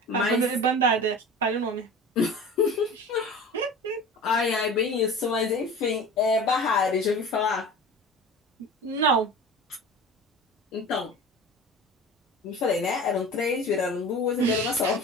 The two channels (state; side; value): normal; both; correlation 0.37